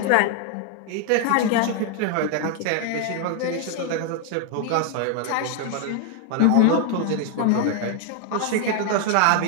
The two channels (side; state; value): both; different; correlation 0.00